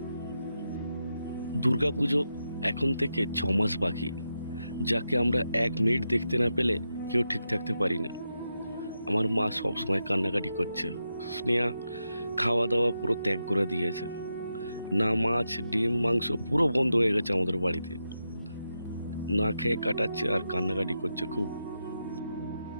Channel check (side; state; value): both; inverted; correlation -0.87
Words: দুর্গাপুজো এখন থেকে 6 মাস বাকি, যাকে আমরা 1 মিনিট দেখতে না পেলে কেউ ঠিক থাকতে পারি না। আমার মা সবসময় কান্নাকাটি করছে। স্নেহা খাওয়া দাওয়া পুরো ত্যাগ করে দিয়েছে। না মাছ, ডিম, মাংস পুরো বন্ধ হয়ে গেছে আমাদের বাড়িতে। না খেয়ে কাটাচ্ছে আর কান্নাকাটি করছে খুব।